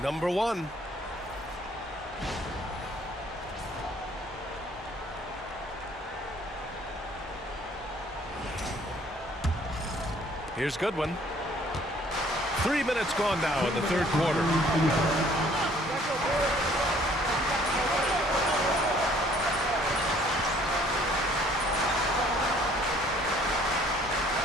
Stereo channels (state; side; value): normal; both; correlation 0.59